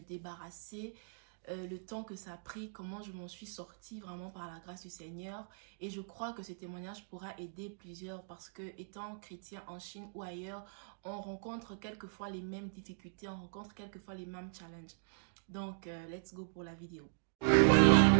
le temps que ça a pris, comment je m'en suis sortie vraiment par la grâce du Seigneur. Et je crois que ce témoignage pourra aider plusieurs parce que étant chrétien en Chine ou ailleurs, on rencontre quelquefois les mêmes difficultés, on rencontre quelquefois les mêmes challenges. Donc, let's go pour la vidéo.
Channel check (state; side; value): silent; left; digital silence